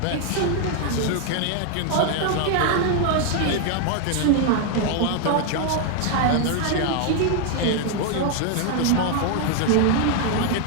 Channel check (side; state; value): both; different; correlation 0.00